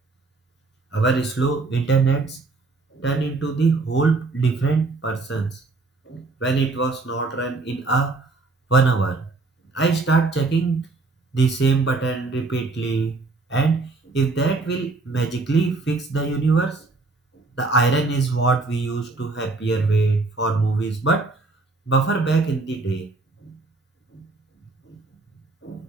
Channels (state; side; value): quieter; left; 3.6 dB